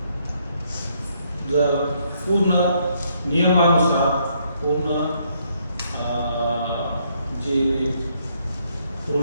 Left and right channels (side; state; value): both; inverted; correlation -0.72